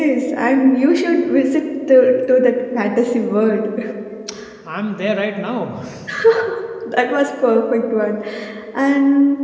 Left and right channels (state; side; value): identical; both; correlation 1.00